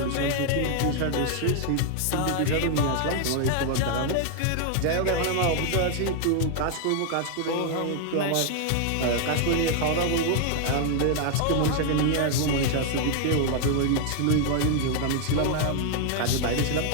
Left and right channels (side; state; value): both; different; correlation 0.00